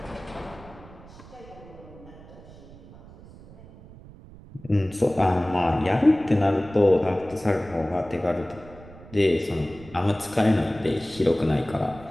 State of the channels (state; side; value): noise; right; rumble, 19 dB below the sound